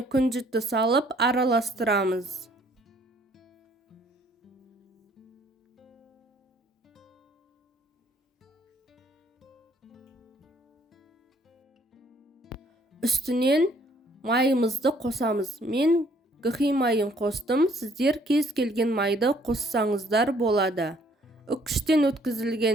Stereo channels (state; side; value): normal; both; correlation 0.62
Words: күнжітті салып араластырамыз. Үстінен майымызды қосамыз. Мен гхи майын қостым, сіздер кез келген майды қоссаңыздар болады. Үккіштен